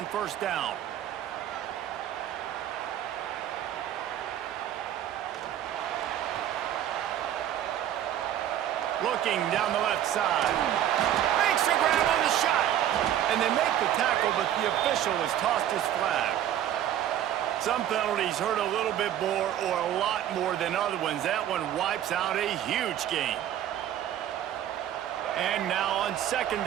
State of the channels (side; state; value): left; quieter; 11.2 dB